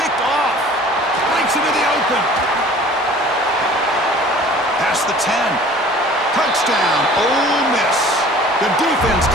picked off. Breaks into the open. Past the 10. Touchdown, Ole Miss. The defense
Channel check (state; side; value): normal; both; correlation 0.48